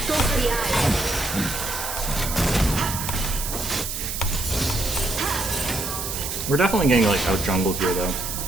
Go for the eye. We're definitely getting like out jungled here though.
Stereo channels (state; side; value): noise; right; hiss, 5 dB below the sound